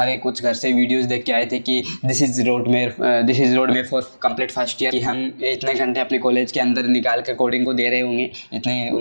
कुछ घर से वीडियोज़ देख के आए थे कि दिस इज़ रोड में फॉर कंप्लीट फर्स्ट ईयर, कि हम इतने घंटे अपने कॉलेज के अंदर निकाल कर कोडिंग को दे रहे होंगे, इतने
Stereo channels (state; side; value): inverted; both; correlation -1.00